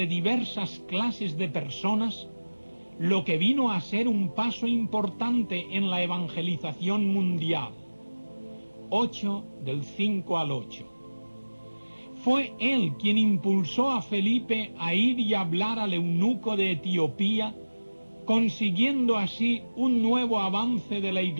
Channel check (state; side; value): inverted; both; correlation -1.00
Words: diversas clases de personas, lo que vino a ser un paso importante en la evangelización mundial. 8 del 5 al 8. Fue él quien impulsó a Felipe a ir y hablar al eunuco de Etiopía, consiguiendo así un nuevo avance de la